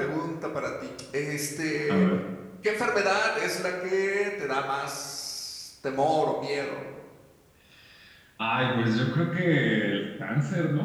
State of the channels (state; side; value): identical; both; correlation 1.00